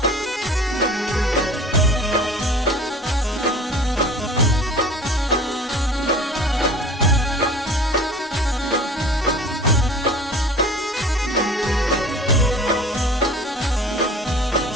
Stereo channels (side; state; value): both; normal; correlation 0.43